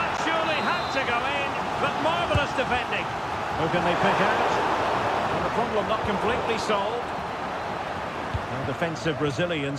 surely had to go in, but marvellous defending. Who can they pick out? And the problem not completely solved. And defensive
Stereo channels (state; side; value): identical; both; correlation 1.00